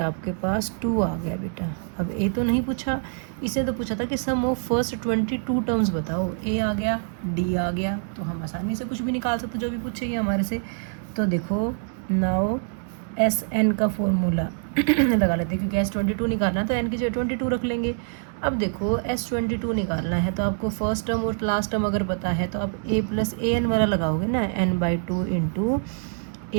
पास 2 आ गया बेटा। अब ए तो नहीं पूछा, इसे तो पूछा था कि सम ऑफ फर्स्ट 22 टर्म्स बताओ। ए आ गया, डी आ गया, तो हम आसानी से कुछ भी निकाल सकते जो भी पूछेगी हमारे से। तो देखो नाउ एस एन का फॉर्मूला लगा लेते हैं, क्योंकि S22 निकालना है तो एन की जगह 22 रख लेंगे। अब देखो S22 निकालना है तो आपको फर्स्ट टर्म और लास्ट टर्म अगर पता है तो आप ए प्लस ए एन वाला लगाओगे ना, n/2 into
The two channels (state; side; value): silent; left; 62 dB below the other